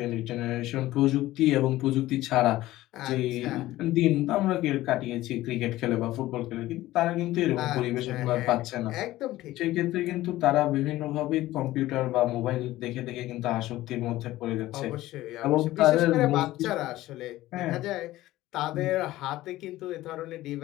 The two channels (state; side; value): quieter; right; 16.2 dB